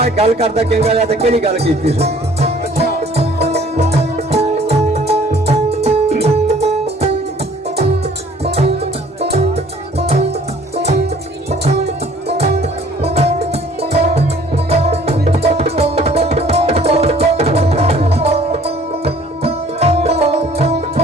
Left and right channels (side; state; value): both; normal; correlation 0.54